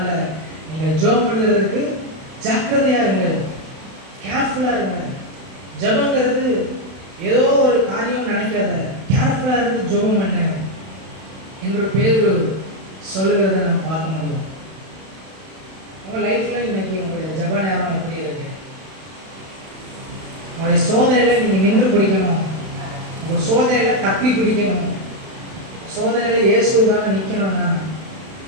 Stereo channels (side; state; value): left; late; 31 ms